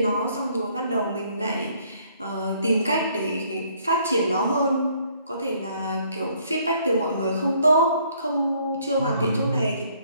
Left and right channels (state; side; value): inverted; both; correlation -0.64